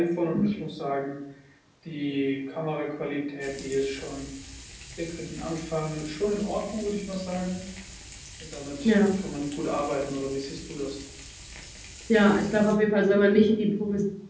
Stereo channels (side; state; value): both; identical; correlation 1.00